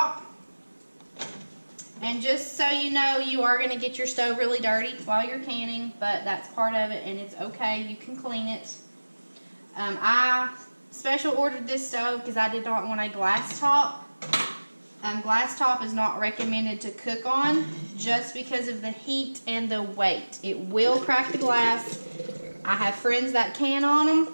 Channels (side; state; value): both; inverted; correlation -1.00